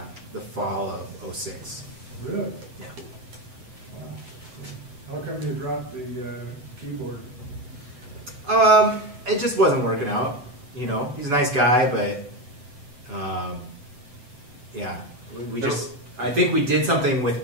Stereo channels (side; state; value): left; late; 7.9 ms